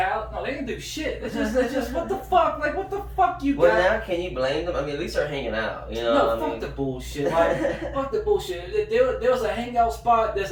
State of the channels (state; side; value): identical; both; correlation 1.00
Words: No, they didn't do shit. It's just what the fuck? Like, what the fuck you got? Well, now can you blame them? I mean, at least they're hanging out, you know? No, fuck the bullshit. Like, fuck the bullshit. There was a hangout spot. There's